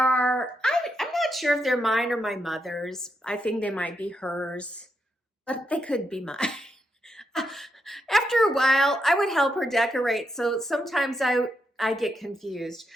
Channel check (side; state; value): both; normal; correlation 0.82